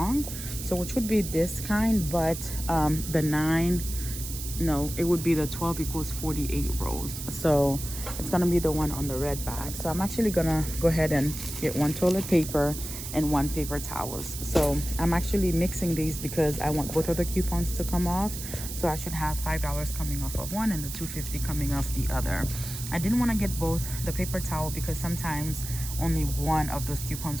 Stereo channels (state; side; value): noise; right; hiss, 8 dB below the sound